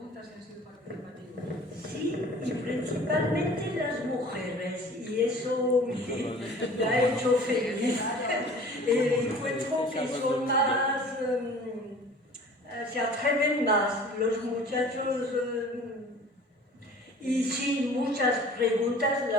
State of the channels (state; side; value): normal; both; correlation 0.46